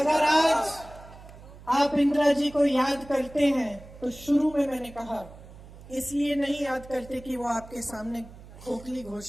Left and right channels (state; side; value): noise; right; hum, 18 dB below the sound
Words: आज आप इंदिरा जी को याद करते हैं तो शुरू में मैंने कहा इसलिए नहीं याद करते कि वो आपके सामने खोखली